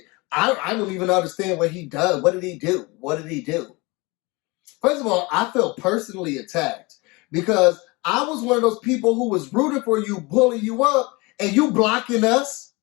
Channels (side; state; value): right; quieter; 25.3 dB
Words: I don't even understand what he does. What did he do? What did he do? First of all, I felt personally attacked because I was one of those people who was rooting for you, pulling you up, and you blocking us.